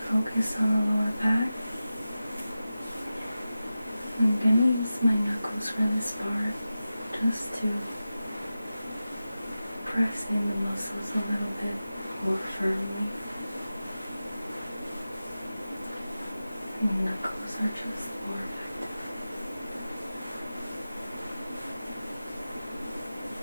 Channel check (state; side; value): inverted; both; correlation -0.94